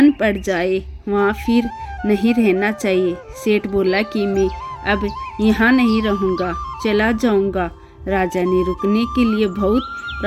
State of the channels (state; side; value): identical; both; correlation 1.00